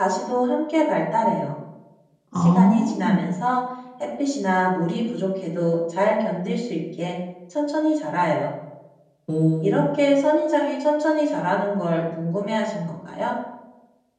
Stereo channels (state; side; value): identical; both; correlation 1.00